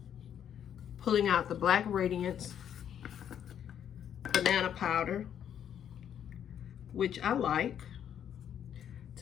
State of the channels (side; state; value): right; quieter; 9.3 dB